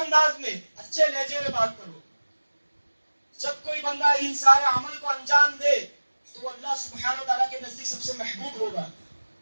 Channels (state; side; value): inverted; both; correlation -1.00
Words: میں اچھے لہجے میں بات کرو. جب کوئی بندہ ان سارے عمل کو انجام دے تو وہ اللہ سبحانہ وتعالیٰ کے نزدیک سب سے محبوب ہوگا،